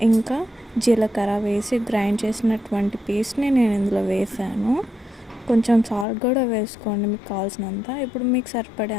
ఇంకా జీలకర్ర వేసి గ్రైండ్ చేసినటువంటి పేస్ట్ని నేను ఇందులో వేసాను. కొంచెం సాల్ట్ కూడా వేసుకోండి మీకు కావాల్సినంత. ఇప్పుడు మీకు సరిపడే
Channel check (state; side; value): drops out; right; at 6.1 s